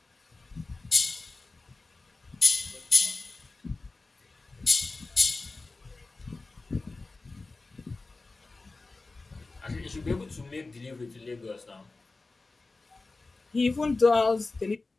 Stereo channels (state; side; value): quieter; right; 3.5 dB